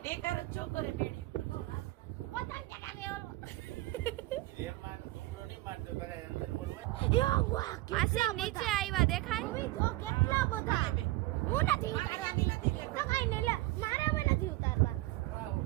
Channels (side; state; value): left; quieter; 19.3 dB